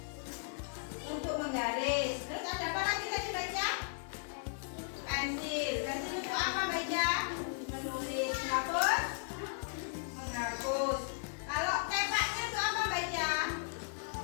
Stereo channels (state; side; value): silent; right; digital silence